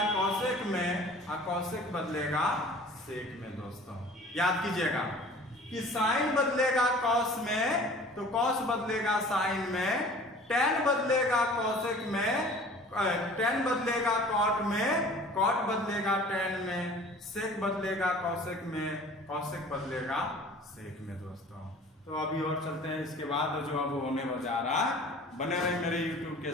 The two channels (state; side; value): normal; both; correlation 0.46